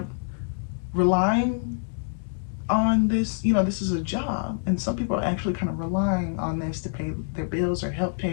relying on this, you know, this is a job, and some people are actually kind of relying on this to pay their bills or help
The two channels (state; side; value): silent; right; 61 dB below the other